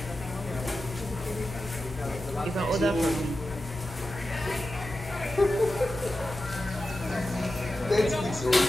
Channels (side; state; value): both; normal; correlation 0.92